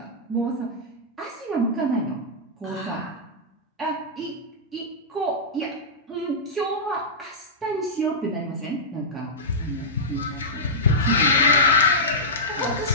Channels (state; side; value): normal; both; correlation -0.11